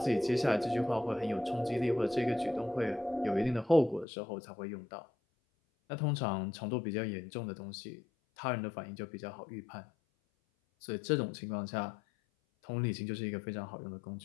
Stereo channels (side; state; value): right; drops out; at 4.0 s